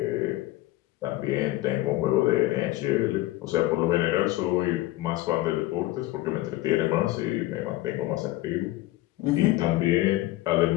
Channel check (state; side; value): quieter; right; 17.1 dB